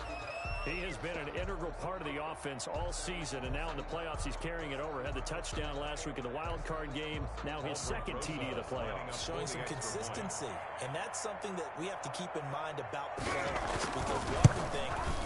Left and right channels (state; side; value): identical; both; correlation 1.00